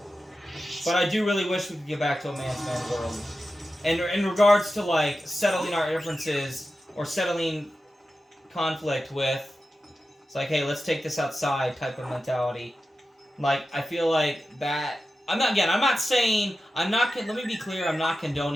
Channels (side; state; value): both; normal; correlation 0.92